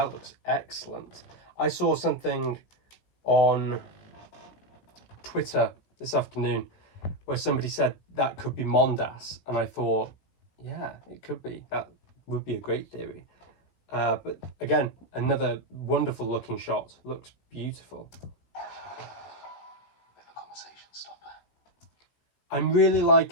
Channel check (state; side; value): late; right; 17 ms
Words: looks excellent. I saw something on Twitter this afternoon where somebody said that could be Mondas, and I thought, yeah, it could be. That would be a great theory. But again, another wonderful looking shot. Looks beautiful. Bit of a conversation stopper. I'm really